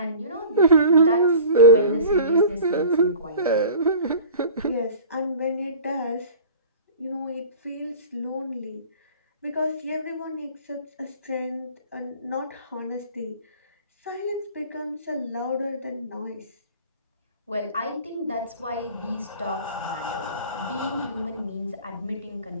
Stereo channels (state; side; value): inverted; both; correlation -0.42